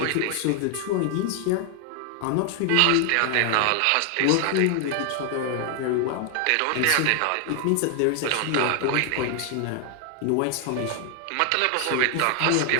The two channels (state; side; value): different; both; correlation 0.00